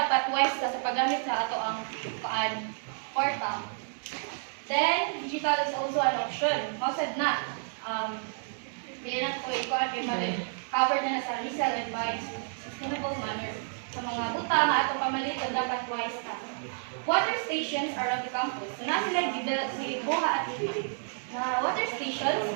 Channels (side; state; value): left; silent; digital silence